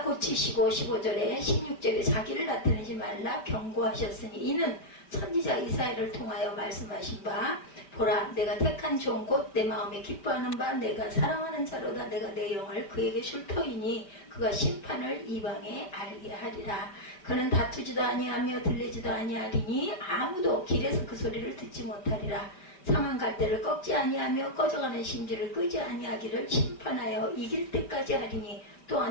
고치시고 15절에 16절에 자기를 나타내지 말라 경고하셨으니 이는 선지자 이사야를 통하여 말씀하신 바 보라 내가 택한 종 곧 내 마음에 기뻐하는 바 내가 사랑하는 자로다 내가 내 영을 그에게 줄 터이니 그가 심판을 이방에 알게 하리라. 그는 다투지도 아니하며 들리지도 아니하리니 아무도 길에서 그 소리를 듣지 못하리라. 상한 갈대를 꺾지 아니하며 꺼져가는 심지를 끄지 아니하기를 심판하여 이길 때까지 하리니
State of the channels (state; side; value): late; right; 5.2 ms